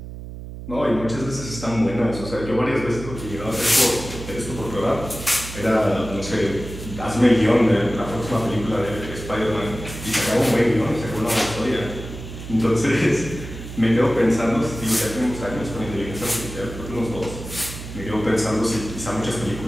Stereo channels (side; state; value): right; noise; hum, 11 dB below the sound